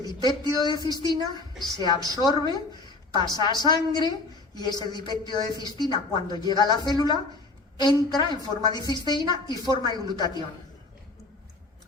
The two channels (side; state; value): right; quieter; 3.3 dB